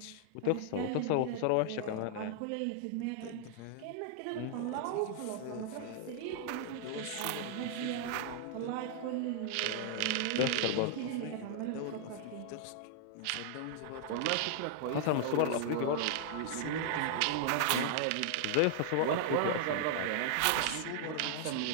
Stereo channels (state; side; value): different; both; correlation -0.01